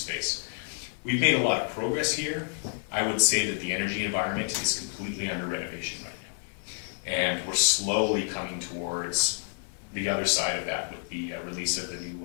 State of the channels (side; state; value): right; silent; 58 dB below the other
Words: We've made a lot of progress here. I would say that the energy environment is completely under renovation right now. And we're slowly coming towards the other side of that with the release of the